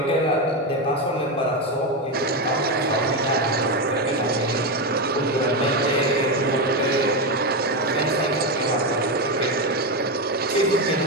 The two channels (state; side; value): normal; both; correlation 0.11